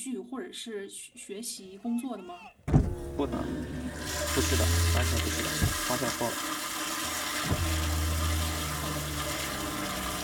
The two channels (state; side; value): identical; both; correlation 1.00